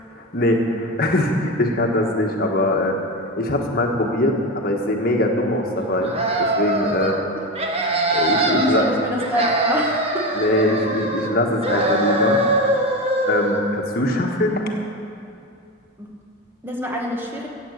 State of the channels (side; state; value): both; normal; correlation 0.21